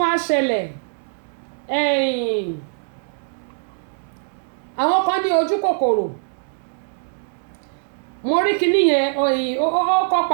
wá ṣẹlẹ̀ àwọn kan ní ojú kòkòrò mo rí kíní yẹn ó kọ́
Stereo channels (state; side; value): silent; left; 64 dB below the other